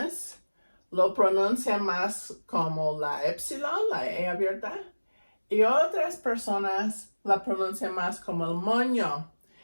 lo pronuncian más como la epsilon, la E abierta, y otras personas la pronuncian más como el moño.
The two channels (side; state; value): both; inverted; correlation -1.00